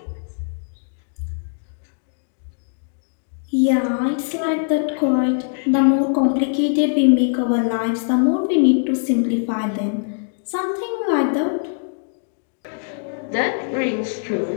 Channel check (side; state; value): right; silent; digital silence